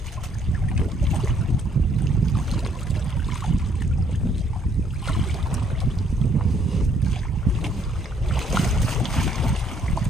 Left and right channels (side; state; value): both; normal; correlation 0.66